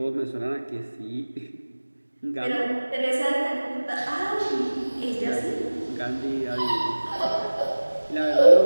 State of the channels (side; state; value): both; inverted; correlation -1.00